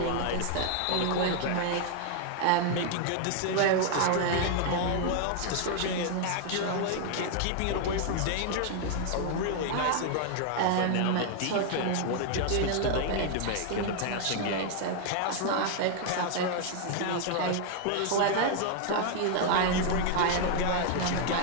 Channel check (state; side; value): different; both; correlation 0.00